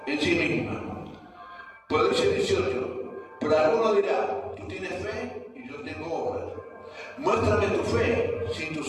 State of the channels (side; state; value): both; identical; correlation 1.00